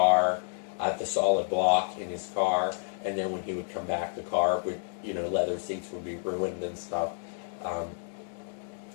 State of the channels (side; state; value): right; silent; digital silence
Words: the solid block in his car, and then when he would come back, the car would, leather seats would be ruined and stuff.